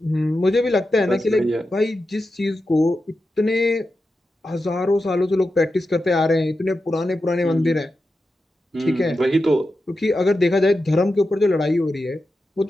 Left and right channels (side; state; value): both; normal; correlation 0.90